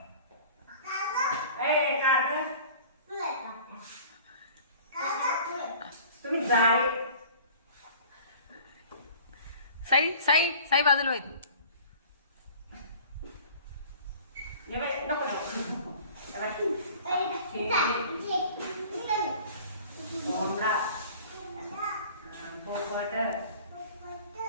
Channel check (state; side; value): inverted; both; correlation -0.46